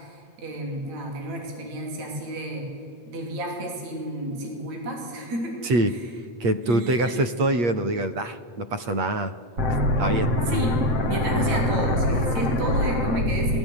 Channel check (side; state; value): left; late; 8.5 ms